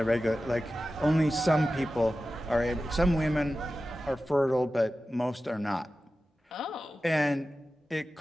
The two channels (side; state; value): both; normal; correlation 0.94